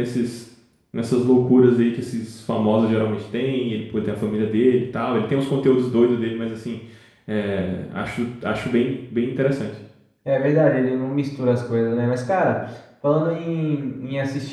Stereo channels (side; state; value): both; identical; correlation 1.00